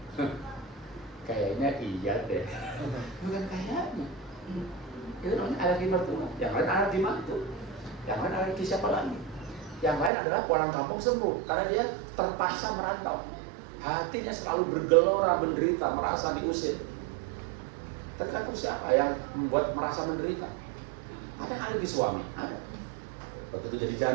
Kayaknya iya deh. Bukan kayaknya. Itu namanya alergi mertua. Yang lain alergi mantu. Yang lain alergi siapa lagi? Yang lain adalah pulang kampung sembuh karena dia terpaksa merantau. Hatinya selalu bergelora, menderita, merasa diusir. Tergantung siapa yang membuat merasa menderita. Ada yang alergi suami, ada. Begitu jadi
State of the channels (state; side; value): drops out; left; at 10.1 s